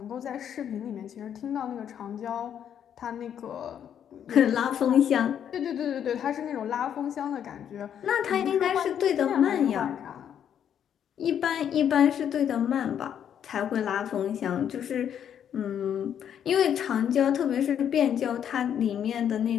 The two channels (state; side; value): quieter; right; 9.1 dB